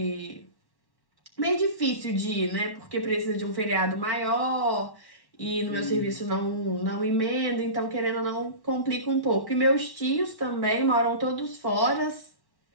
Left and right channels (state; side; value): late; right; 1.1 ms